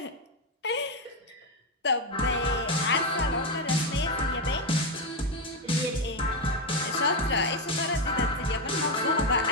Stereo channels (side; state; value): both; normal; correlation 0.08